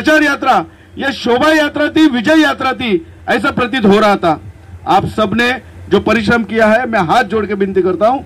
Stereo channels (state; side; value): identical; both; correlation 1.00